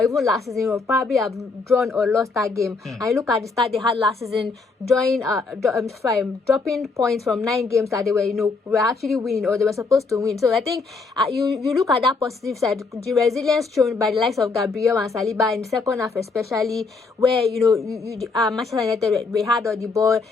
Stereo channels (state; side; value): quieter; right; 4.2 dB